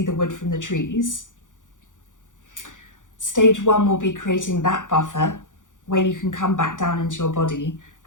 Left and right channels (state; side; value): late; right; 0.87 ms